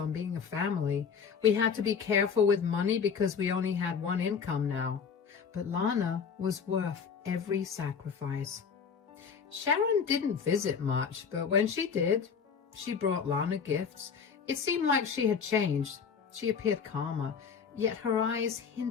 being a family. We had to be careful with money because we only had one income now. But Lana was worth every sacrifice. Sharon didn't visit much, but when she did, she brought Lana gifts. It seemed like she had changed. She appeared calmer, yet her eyes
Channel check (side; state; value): right; quieter; 6.4 dB